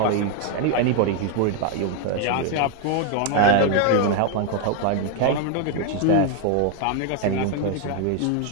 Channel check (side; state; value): both; different; correlation 0.01